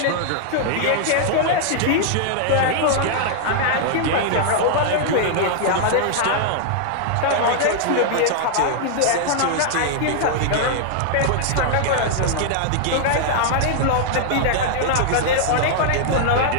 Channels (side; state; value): both; different; correlation -0.01